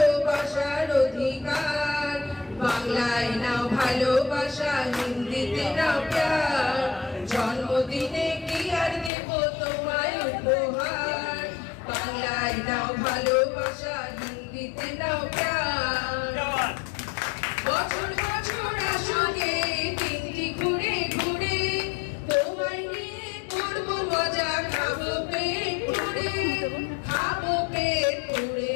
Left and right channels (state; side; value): drops out; right; at 9.1 s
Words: অধিকার। বাংলায় নাও ভালোবাসা, হিন্দিতে নাও প্যার। জন্মদিনে কি আর দেব তোমায় উপহার। বাংলায় নাও ভালোবাসা, হিন্দিতে নাও প্যার। বছর বছর আসুকে দিনটি ঘুরে ঘুরে, তোমায় নিয়ে করবো মজা, খাবো পেট পুড়ে, খাবো পেট